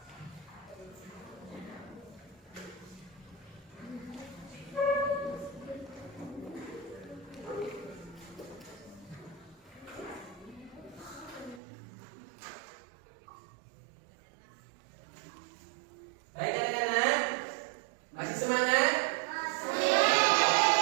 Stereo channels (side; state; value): left; drops out; at 11.6 s